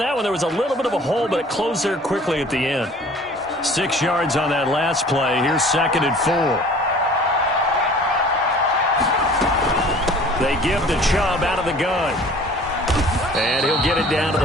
one, there was a little bit of a hole, but it closed there quickly at the end. 6 yards on that last play. Here's 2nd and 4. They give to Chubb out of the gun. And he'll get it down to the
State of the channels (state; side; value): normal; both; correlation 0.49